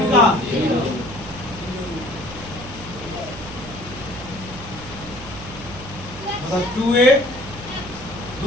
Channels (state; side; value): noise; right; hum, 14 dB below the sound